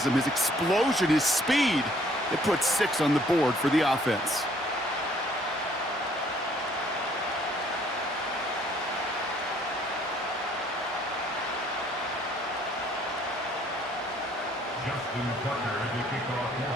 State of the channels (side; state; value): both; normal; correlation 0.62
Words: his explosion, his speed, it puts 6 on the board for the offense. Justin Tucker to kick off for